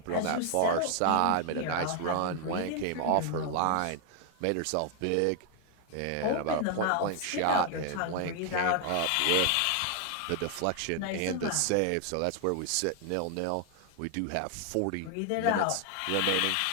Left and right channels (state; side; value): different; both; correlation 0.00